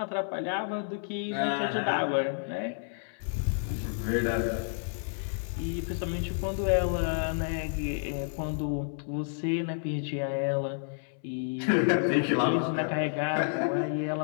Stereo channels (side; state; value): right; silent; 58 dB below the other